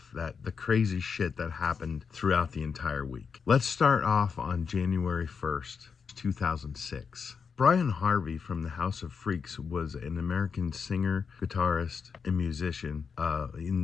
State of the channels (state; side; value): quieter; right; 6.0 dB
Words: crazy shit that happened throughout the entire week. Let's start off on January 1st, 2006. Brian Harvey from the House of Freaks was an American singer, guitarist, and musician